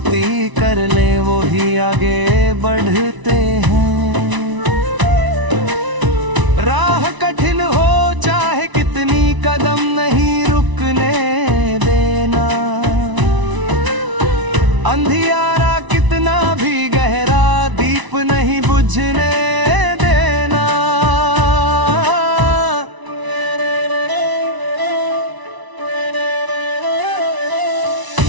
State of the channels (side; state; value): left; late; 1.0 ms